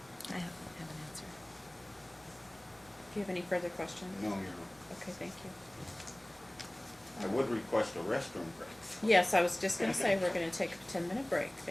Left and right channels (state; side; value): noise; right; rumble, 29 dB below the sound